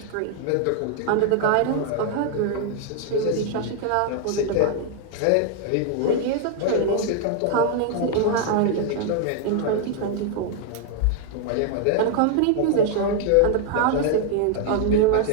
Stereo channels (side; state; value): both; different; correlation 0.00